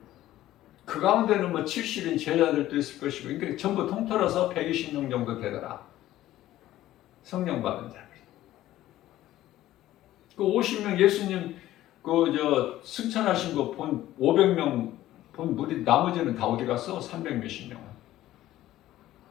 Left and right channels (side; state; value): right; quieter; 14.4 dB